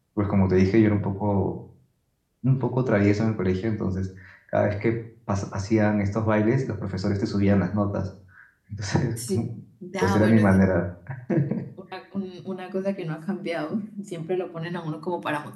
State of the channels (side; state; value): both; identical; correlation 1.00